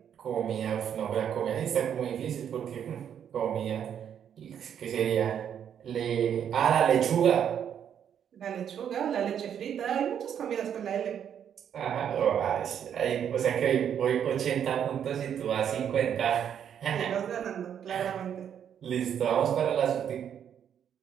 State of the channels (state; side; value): quieter; left; 8.8 dB